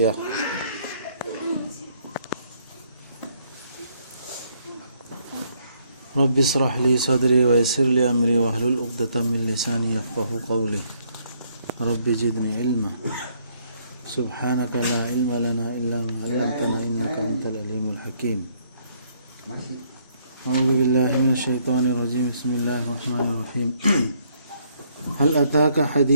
رب اشرح لي صدري ويسر لي أمري واحلل عقدة من لساني يفقهوا قولي. رب زدني علما. سبحانك لا علم لنا إلا ما علمتنا إنك أنت العليم الحكيم. أعوذ بالله من الشيطان الرجيم. بسم الله الرحمن الرحيم. هل أتاك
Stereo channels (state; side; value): inverted; both; correlation -0.69